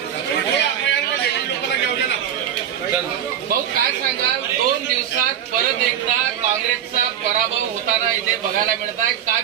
भाऊ काय सांगाल, 2 दिवसात परत एकदा काँग्रेसचा पराभव होताना इथे बघायला मिळत आहे, काय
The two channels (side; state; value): left; quieter; 9.6 dB